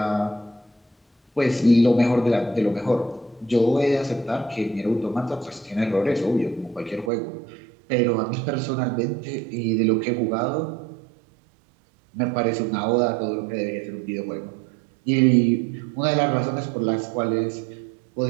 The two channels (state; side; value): drops out; left; at 7.1 s